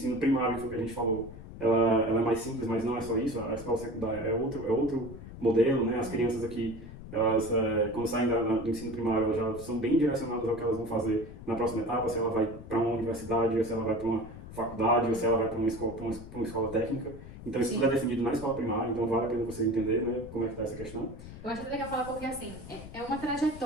primário, que foi o que a gente falou, ela é mais simples, mas não é só isso, a escola secundária é outro modelo, né? As crianças aqui, elas, quando saem do ensino primário, elas já são bem direcionadas ao que elas vão fazer na próxima etapa, se ela vai para uma universidade, ou se ela vai para uma faculdade, ou se ela vai para uma escola técnica. Então isso tudo é definido na escola primária, então vale a pena você entender, né, como é que está essa questão. Eu acho legal falar porque, assim, é uma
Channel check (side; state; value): left; noise; rumble, 14 dB below the sound